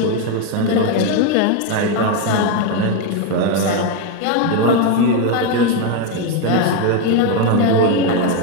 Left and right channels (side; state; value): both; different; correlation 0.02